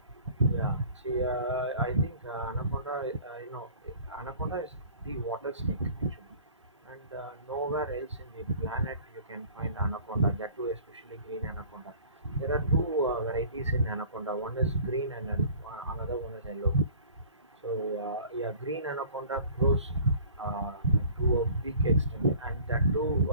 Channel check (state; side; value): inverted; both; correlation -0.48